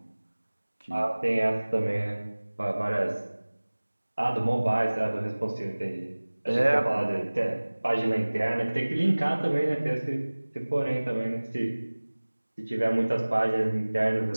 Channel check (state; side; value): inverted; both; correlation -1.00